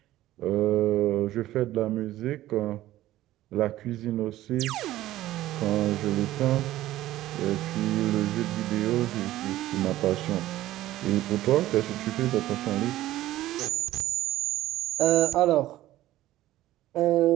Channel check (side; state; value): left; quieter; 15.0 dB